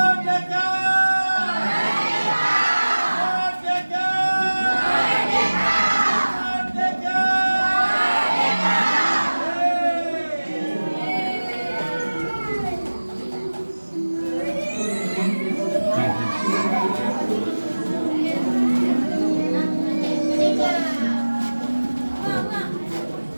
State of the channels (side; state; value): both; inverted; correlation -1.00